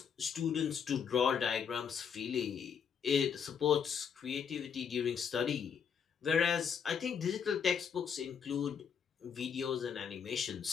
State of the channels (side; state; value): right; quieter; 7.1 dB